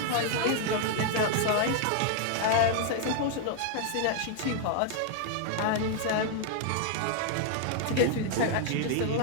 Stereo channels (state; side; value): different; both; correlation 0.00